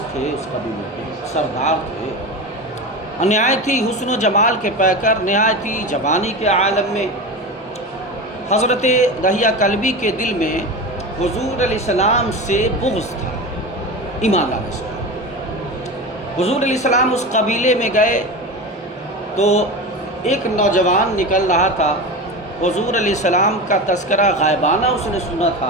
تھے، اس قبیلے کے سردار تھے، نہایتی حسن و جمال کے پیکر، نہایتی جوانی کے عالم میں حضرت دحیہ کلبی کے دل میں حضور علیہ السلام سے بغض تھا، ایمان لانے سے۔ حضور علیہ السلام اس قبیلے میں گئے تو ایک نوجوان نکل رہا تھا، حضور علیہ السلام کا تذکرہ غائبانہ اس نے سنا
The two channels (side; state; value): both; normal; correlation 0.26